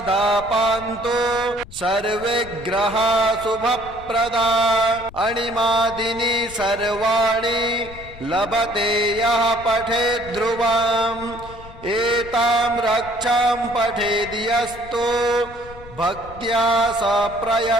पान्तु सर्वे ग्रहा शुभप्रदा अणिमादिनी सर्वाणि लभते यः पठेत् ध्रुवम् एतां रक्षां पठेद्यस्तु भक्त्या स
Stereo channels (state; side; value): noise; left; rumble, 17 dB below the sound